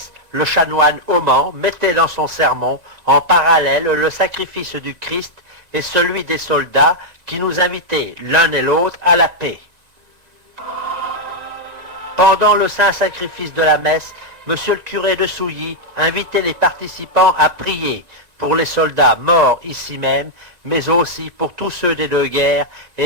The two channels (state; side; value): late; left; 1.9 ms